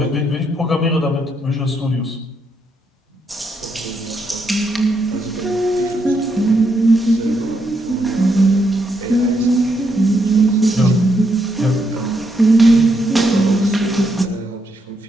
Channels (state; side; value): normal; both; correlation 0.78